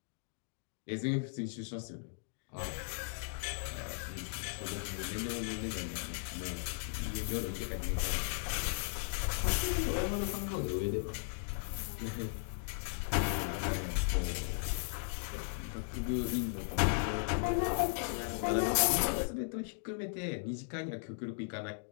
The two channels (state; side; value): silent; right; digital silence